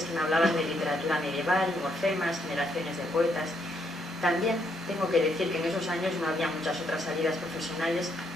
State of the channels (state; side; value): normal; both; correlation 0.74